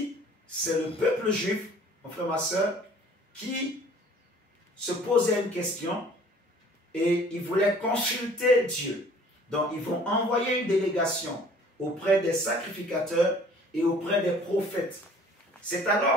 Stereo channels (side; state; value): both; normal; correlation 0.52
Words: c'est le peuple juif, mon frère, ma soeur, qui se posait une question et ils voulaient consulter Dieu. Donc, ils vont envoyer une délégation auprès des sacrificateurs et auprès des prophètes. C'est